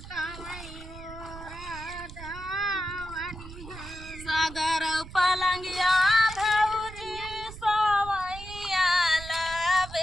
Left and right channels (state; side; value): noise; right; rumble, 14 dB below the sound